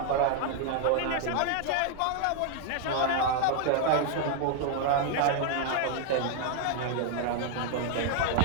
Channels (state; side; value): different; both; correlation 0.00